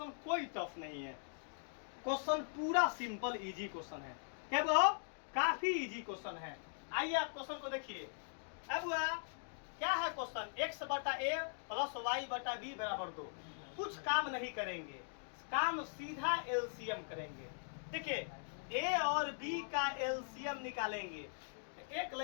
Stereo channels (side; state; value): right; silent; digital silence